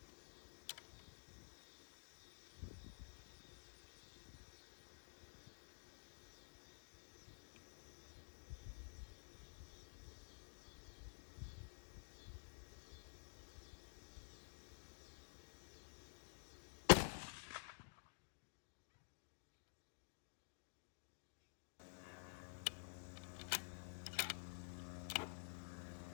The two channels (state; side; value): silent; right; digital silence